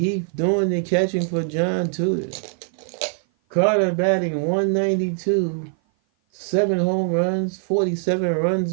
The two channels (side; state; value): left; silent; 56 dB below the other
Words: doing the catching for John Tudor. Carter batting 192. 7 home runs, 47 runs